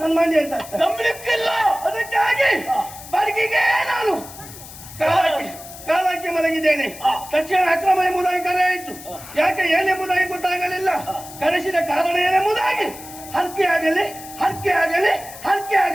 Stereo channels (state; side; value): noise; left; hiss, 15 dB below the sound